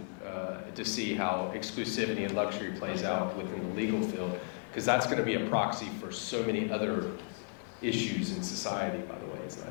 to see how exclusivity and luxury plays out within the legal field, because that's going to be a proxy for so many other issues in society, by the way. It's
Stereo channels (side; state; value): right; quieter; 38.3 dB